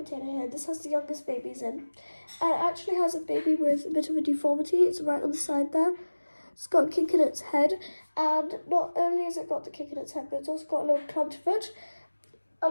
here. This has the youngest babies in, and it actually has a baby with a bit of a deformity. It's right on the side there. It's got a kink in its head, and not only has it got the kink in its head, but it's also got a little clubbed foot,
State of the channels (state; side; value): inverted; both; correlation -1.00